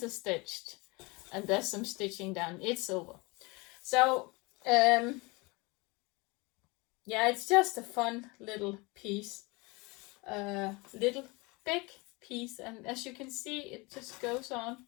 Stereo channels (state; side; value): quieter; right; 26.3 dB